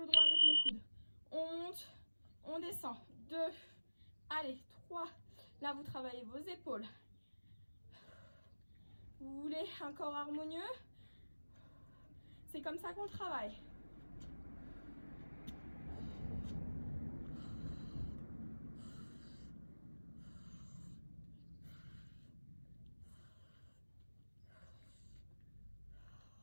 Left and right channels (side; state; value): both; inverted; correlation -1.00